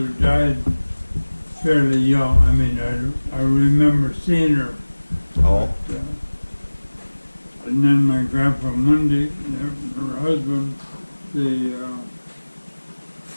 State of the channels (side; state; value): both; inverted; correlation -1.00